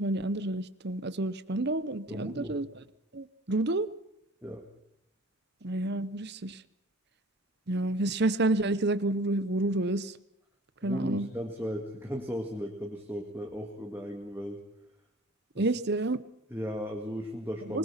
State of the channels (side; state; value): both; normal; correlation 0.47